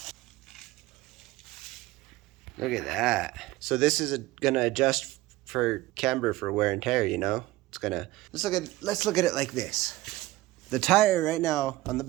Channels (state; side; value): quieter; left; 18.0 dB